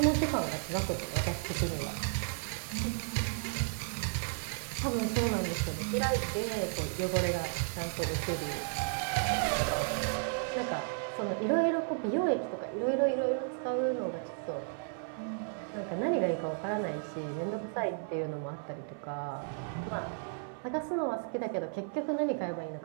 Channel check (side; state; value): left; silent; 55 dB below the other